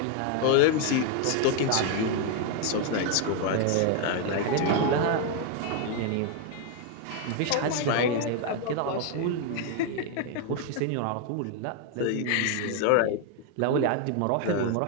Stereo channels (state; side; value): different; both; correlation 0.01